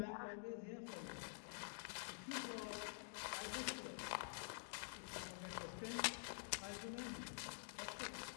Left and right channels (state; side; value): silent; right; digital silence